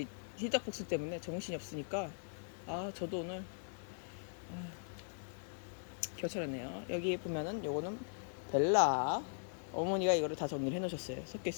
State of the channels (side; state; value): right; silent; digital silence